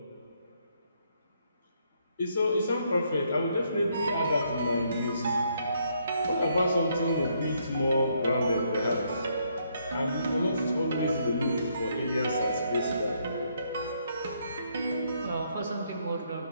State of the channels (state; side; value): inverted; both; correlation -0.73